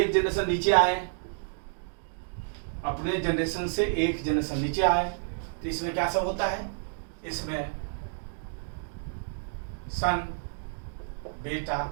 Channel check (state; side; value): silent; left; digital silence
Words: जनरेशन नीचे आए, अपने जनरेशन से एक जनरेशन नीचे आए, तो इसमें क्या सब होता है, इसमें सन, बेटा,